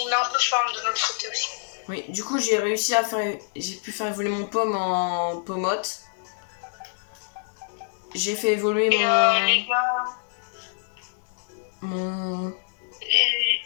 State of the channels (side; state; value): right; silent; 61 dB below the other